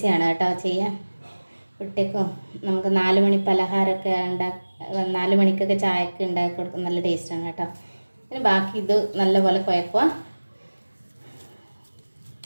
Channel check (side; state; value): both; inverted; correlation -1.00